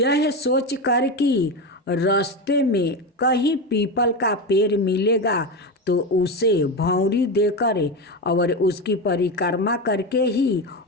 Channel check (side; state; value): both; normal; correlation 0.17